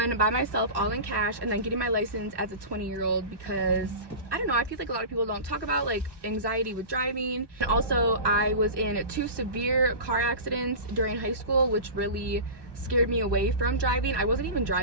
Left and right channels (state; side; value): late; left; 1.1 ms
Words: by myself, all in cash, and then getting my license as a 20-year-old because I don't know, I feel like a lot of people don't talk about like anxiety with driving. And also I was in 2 severe car accidents during high school, which really scared me away from driving. I wasn't even